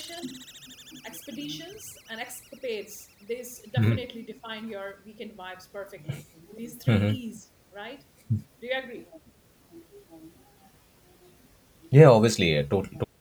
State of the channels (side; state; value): both; identical; correlation 1.00